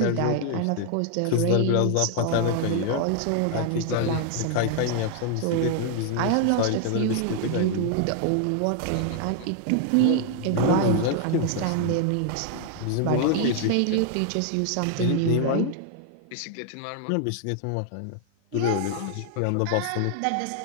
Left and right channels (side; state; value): both; different; correlation 0.00